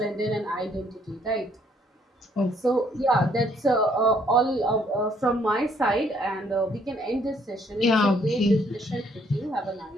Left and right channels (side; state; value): both; normal; correlation 0.66